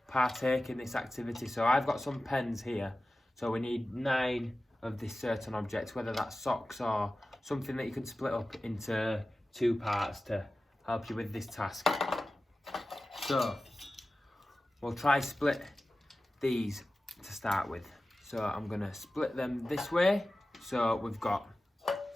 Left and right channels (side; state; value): both; normal; correlation 0.95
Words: partake in this activity. So I've got some pens here, so we need 9 of this certain object, whether that's socks or something that you can split up into 2 parts to help you with this task. So we'll try split these to start with. So I'm going to split them this way. So we've got